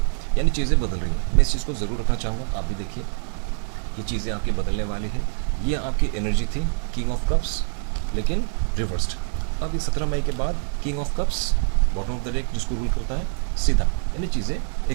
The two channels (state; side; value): silent; left; 62 dB below the other